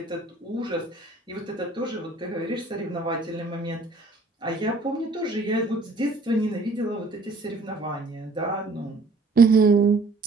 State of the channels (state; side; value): quieter; left; 3.3 dB